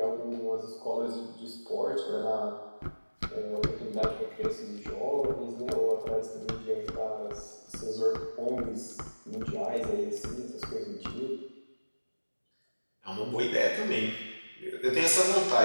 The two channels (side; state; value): both; inverted; correlation -1.00